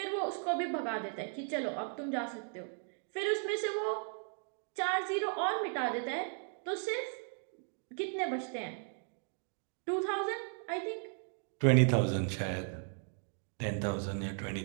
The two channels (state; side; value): silent; left; 54 dB below the other